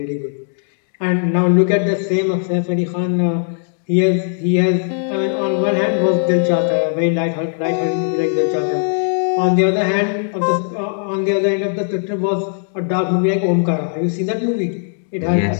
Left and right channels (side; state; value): right; silent; digital silence